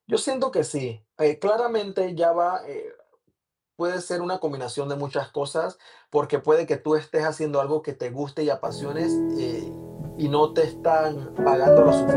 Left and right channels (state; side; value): identical; both; correlation 1.00